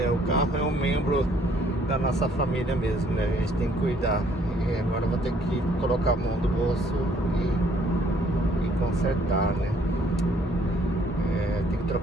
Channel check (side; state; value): both; normal; correlation 0.63